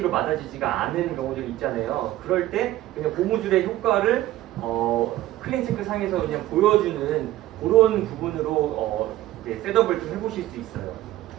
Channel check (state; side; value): quieter; left; 14.8 dB